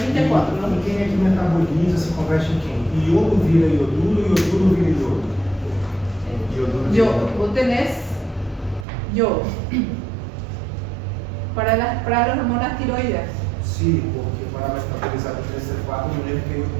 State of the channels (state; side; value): drops out; left; at 8.8 s